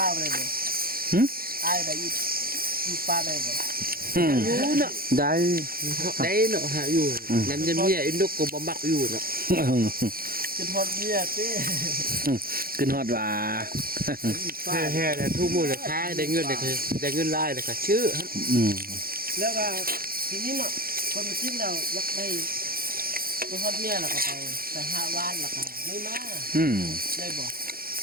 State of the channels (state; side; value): late; left; 0.43 ms